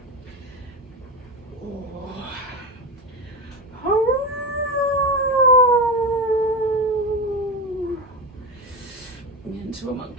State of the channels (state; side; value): normal; both; correlation 0.18